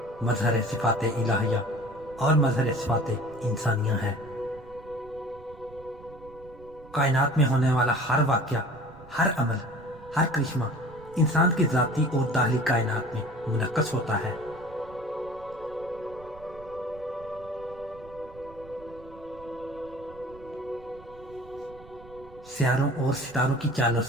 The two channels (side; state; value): right; noise; rumble, 21 dB below the sound